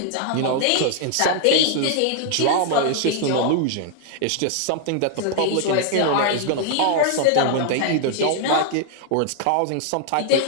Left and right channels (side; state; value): both; different; correlation 0.00